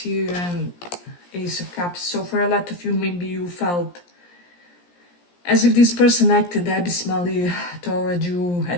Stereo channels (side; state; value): right; late; 17 ms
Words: and Ace of Cups. So for a lot of you, maybe you felt as if this person acted abysmally toward you